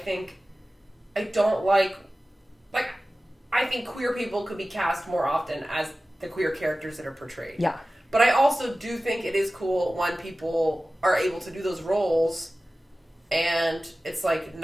queer people could be cast more often as the queer characters that are portrayed. Yeah. But I also do think it is cool when people are able to do those roles and it's like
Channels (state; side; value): normal; both; correlation 0.96